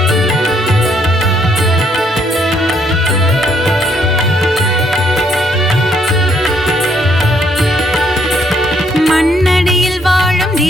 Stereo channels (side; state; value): both; normal; correlation 0.70